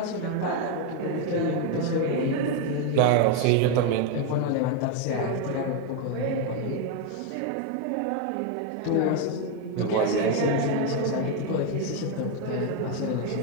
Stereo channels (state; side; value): different; both; correlation 0.02